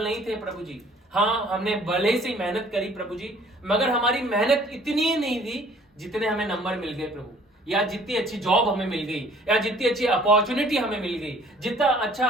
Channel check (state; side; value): normal; both; correlation 0.55